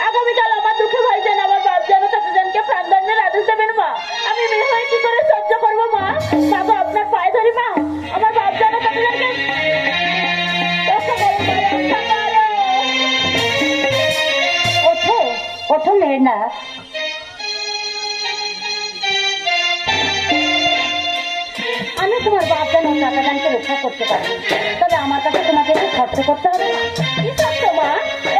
আগামীকাল আমার দুঃখে ভাইজান আমার বাপ যেন চাচাজানকে প্রাণদণ্ডের আদেশ দেবেন মা। আমি মেয়ে হয়ে কি করে সহ্য করবো মা? মা গো, আপনার পায়ে ধরি মা, আমার বাপ যেন চাচাজানকে ওঠো ওঠো মেহেন্দা, আমি তোমার বাপ যেন চাচাজানকে রক্ষা করতে পারি, তবে আমার কাছে তোমাকে একটু খরচ করতে হবে। কি সত্য মা?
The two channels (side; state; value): both; identical; correlation 1.00